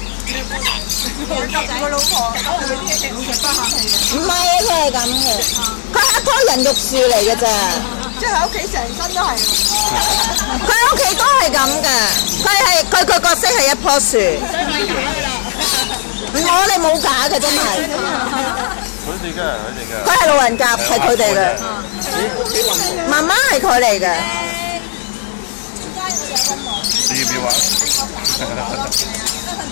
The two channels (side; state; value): right; silent; digital silence